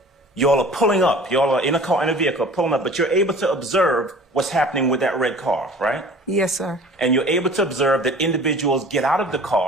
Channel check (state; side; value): normal; both; correlation 0.45